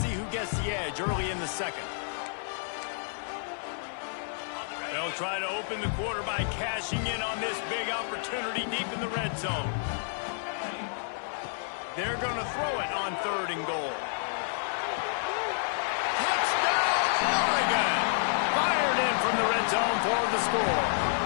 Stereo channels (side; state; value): right; silent; digital silence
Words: who gets the edge early in the second. They'll try to open the quarter by cashing in on this big opportunity deep in the red zone. They're going to throw it on 3rd and goal. Oregon! Fired in from the red zone for the score.